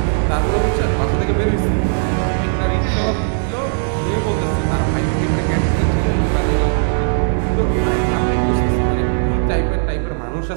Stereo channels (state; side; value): silent; left; 68 dB below the other